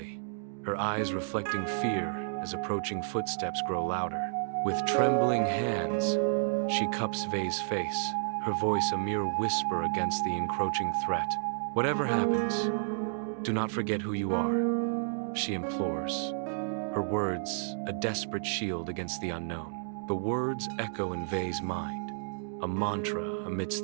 her eyes reflecting fear as approaching footsteps grow louder. With trembling hands, she cups Vey's face, her voice a mere whisper against the encroaching threat. "Whatever happens, do not forget who you are," she implores, her words a desperate shield against the unknown. The words echo in Vey's mind, a mantra amidst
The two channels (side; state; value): left; silent; digital silence